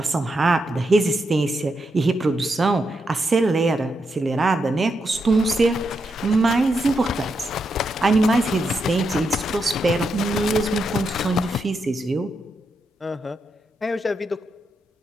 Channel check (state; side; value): normal; both; correlation 0.83